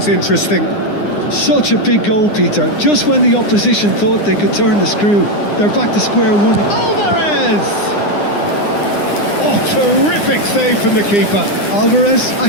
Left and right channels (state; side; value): late; right; 9.8 ms